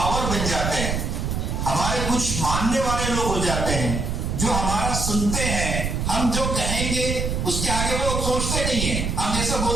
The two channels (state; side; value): noise; right; rumble, 1 dB below the sound